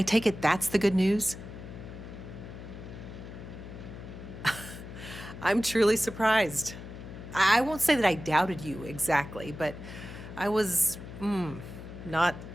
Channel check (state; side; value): noise; left; hum, 12 dB below the sound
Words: take it that's the good news? I'm truly surprised. I won't say that I doubted you exactly, but I was, not